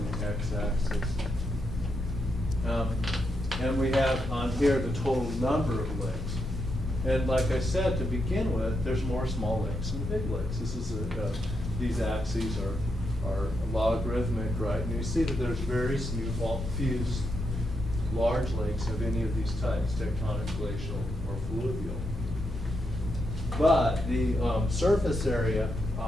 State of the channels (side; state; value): both; normal; correlation 0.82